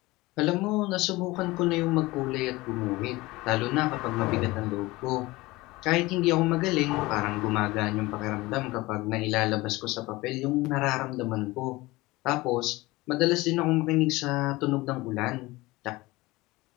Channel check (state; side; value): quieter; right; 20.8 dB